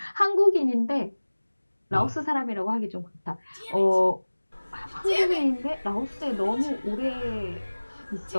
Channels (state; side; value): inverted; both; correlation -1.00